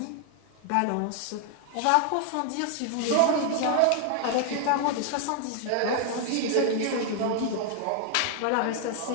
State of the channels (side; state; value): both; different; correlation 0.00